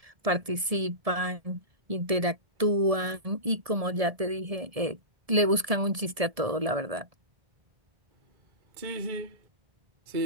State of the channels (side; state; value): left; late; 1.7 ms